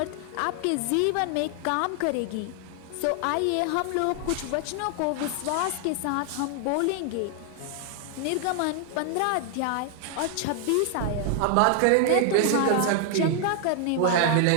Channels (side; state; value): both; different; correlation 0.00